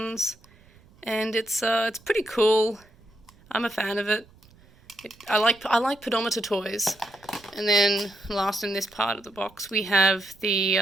And it's pretty cool. I'm a fan of it. I like pedometer toys. And then last in this part of the box we have the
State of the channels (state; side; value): noise; right; rumble, 28 dB below the sound